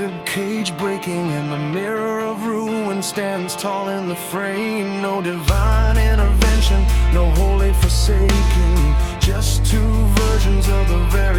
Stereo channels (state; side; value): identical; both; correlation 1.00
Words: Cage breaking, and the mirror of ruin stands tall in the frame. No divine intervention, no holy forsaking, just two versions of the